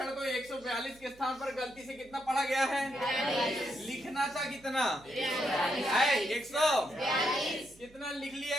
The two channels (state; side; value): noise; right; hum, 25 dB below the sound